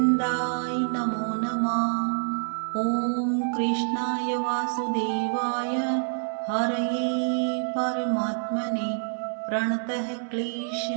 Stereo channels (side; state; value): left; silent; digital silence